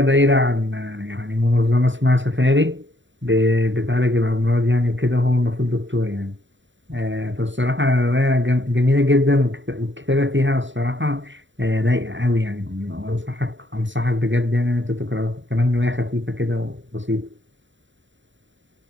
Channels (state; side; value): late; left; 0.54 ms